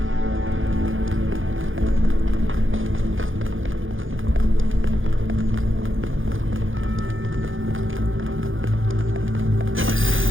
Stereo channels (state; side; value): late; left; 0.58 ms